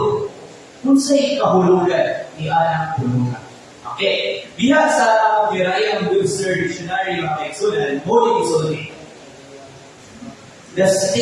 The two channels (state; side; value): identical; both; correlation 1.00